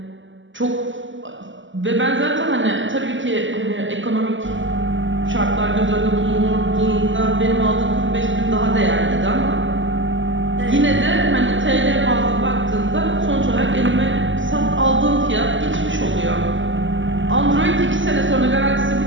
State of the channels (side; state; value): left; late; 0.55 ms